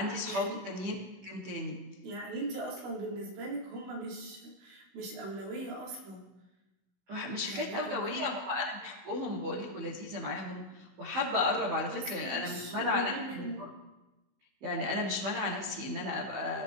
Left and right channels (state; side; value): late; left; 16 ms